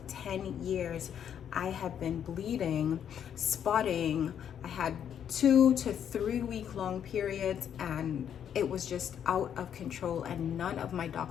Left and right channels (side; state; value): right; quieter; 9.0 dB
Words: 10 years, I have been bleeding, spotting. I had 2 to 3 week long periods, and it was just out of control, and none of my